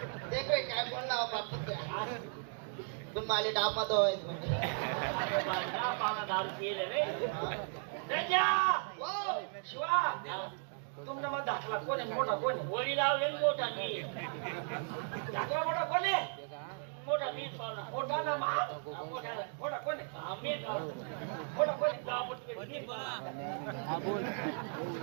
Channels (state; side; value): silent; left; 54 dB below the other